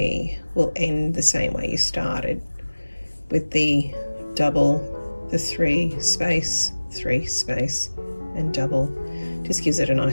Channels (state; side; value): inverted; both; correlation -1.00